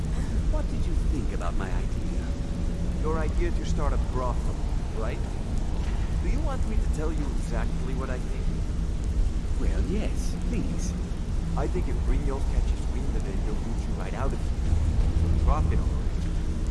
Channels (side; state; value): both; identical; correlation 1.00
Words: What did you think about my idea? Your idea to start a brothel, right? Do you want me to tell you exactly what I think? Well, yes, please. I think if Brynjolf catches wind of it, he'll boot you right out of here. He'll profit on it.